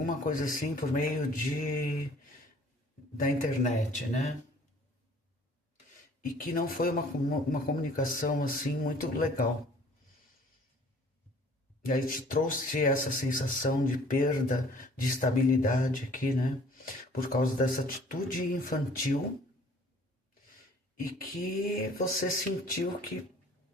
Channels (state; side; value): normal; both; correlation 0.54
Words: coisa assim por meio da internet, né? E que não foi uma comunicação assim muito legal. E aí te trouxe essa sensação de perda de estabilidade aqui, né? Por causa dessa atitude infantil e que você sentiu que